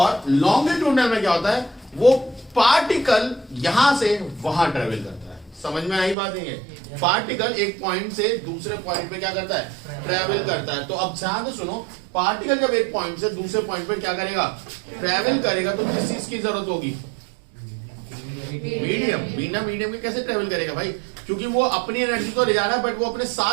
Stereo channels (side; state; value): left; drops out; at 6.2 s